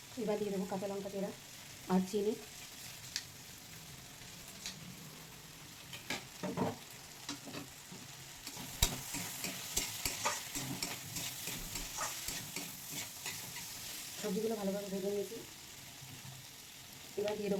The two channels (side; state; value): both; identical; correlation 1.00